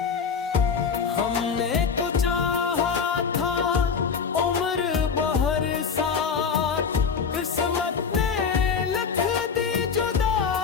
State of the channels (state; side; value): quieter; right; 6.0 dB